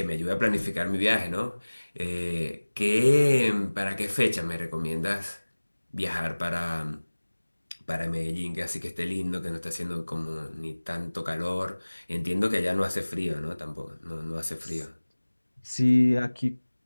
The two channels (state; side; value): inverted; both; correlation -1.00